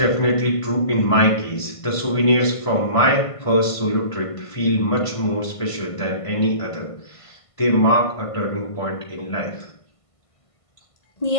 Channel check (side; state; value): right; late; 1.5 ms